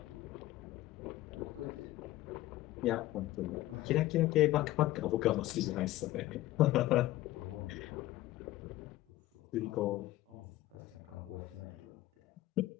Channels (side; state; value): right; quieter; 16.2 dB